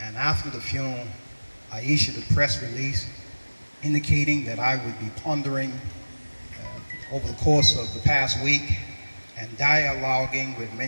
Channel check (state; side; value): inverted; both; correlation -1.00